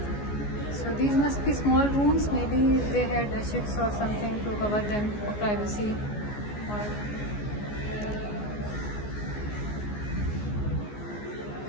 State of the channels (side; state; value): right; late; 14 ms